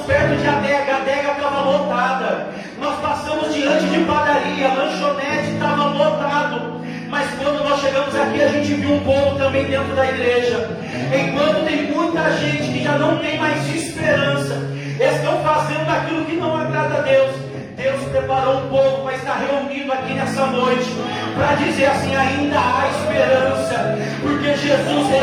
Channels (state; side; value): identical; both; correlation 1.00